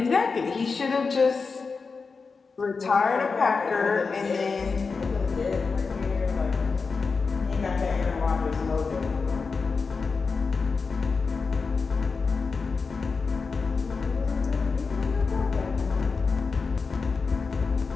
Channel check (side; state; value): right; quieter; 4.7 dB